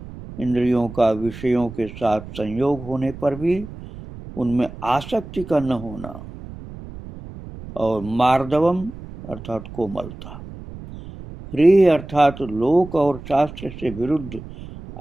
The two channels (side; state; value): right; noise; rumble, 14 dB below the sound